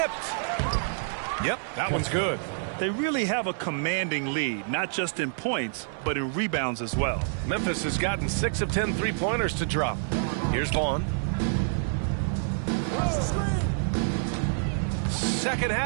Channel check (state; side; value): silent; left; 58 dB below the other